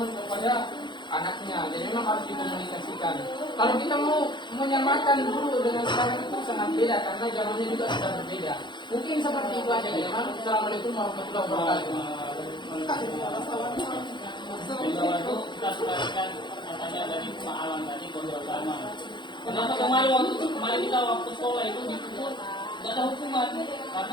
kepada anaknya. Jadi memang harus dikomunikasikan. Kalau kita mau menyamakan dulu dengan sekarang itu sangat beda karena zamannya juga sudah berbeda. Mungkin seperti itu aja ya. Assalamualaikum warahmatullahi wabarakatuh. Bahwa itu kita selesaikan katanya dari Pak Alam tadi kontrol sama. Kenapa kemarin kita waktu sekolah itu dipukul nggak ada hukuman karena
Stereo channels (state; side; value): late; right; 0.22 ms